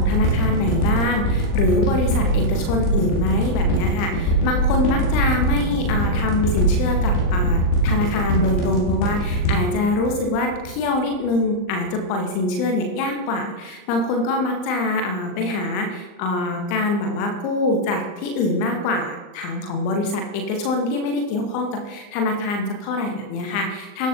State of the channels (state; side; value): late; right; 39 ms